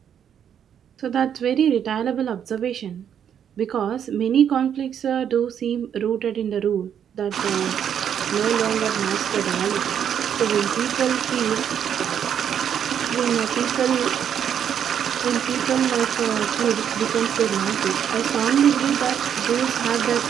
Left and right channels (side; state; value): left; quieter; 8.8 dB